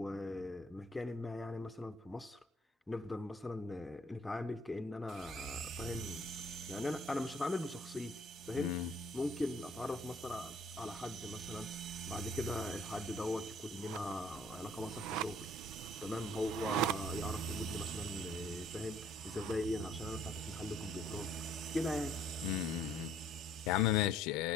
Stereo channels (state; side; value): normal; both; correlation 0.59